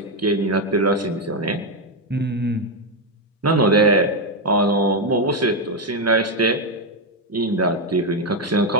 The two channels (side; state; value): both; normal; correlation 0.05